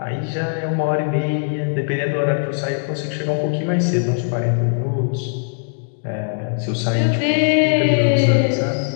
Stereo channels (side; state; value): right; silent; 66 dB below the other